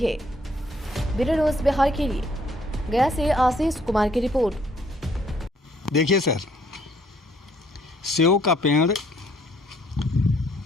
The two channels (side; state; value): both; normal; correlation 0.65